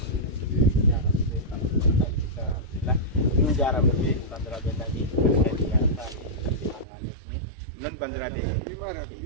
min jarama ɓe bandiraɓe nani non bandiraɓe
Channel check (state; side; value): drops out; left; at 6.9 s